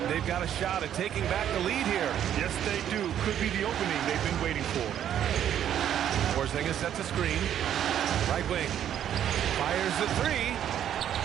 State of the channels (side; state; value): left; quieter; 10.2 dB